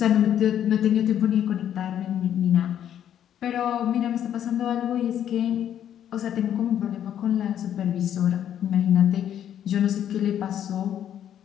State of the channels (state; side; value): quieter; right; 10.1 dB